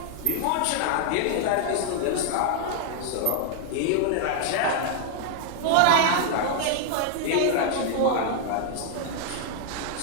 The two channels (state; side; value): different; both; correlation -0.01